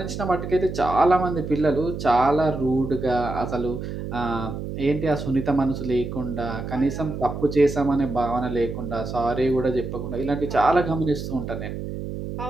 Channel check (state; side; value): noise; right; hum, 6 dB below the sound